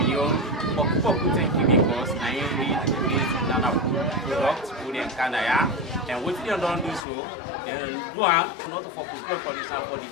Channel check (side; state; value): right; drops out; at 7.0 s